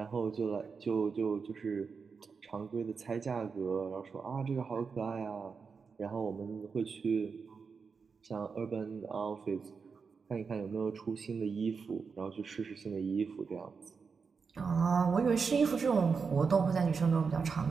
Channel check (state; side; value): quieter; left; 5.4 dB